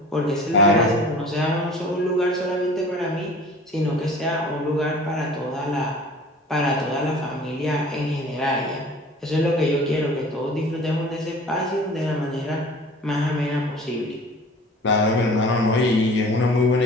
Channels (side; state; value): both; normal; correlation 0.45